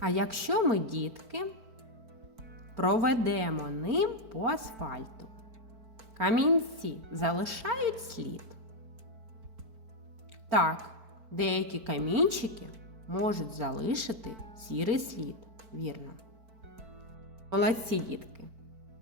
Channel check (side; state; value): left; late; 4.5 ms